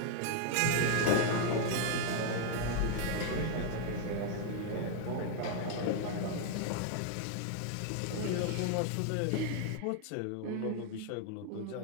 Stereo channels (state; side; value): different; both; correlation 0.00